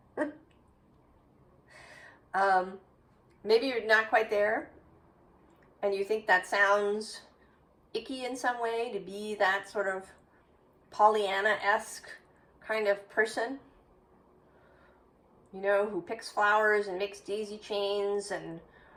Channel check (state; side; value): identical; both; correlation 1.00